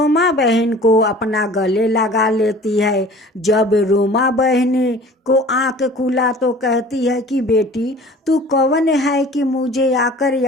बहन को अपना गले लगा लेती है। जब रोमा बहन को आंख खुला तो कहती है कि बेटी तू कौन है कि मुझे आकर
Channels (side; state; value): both; normal; correlation 0.45